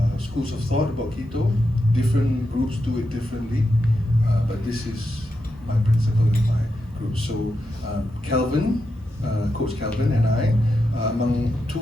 schools of thought about keto. Different groups do it differently, but this is my principle in my group. So Calvin, Coach Calvin and I, among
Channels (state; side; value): normal; both; correlation 0.86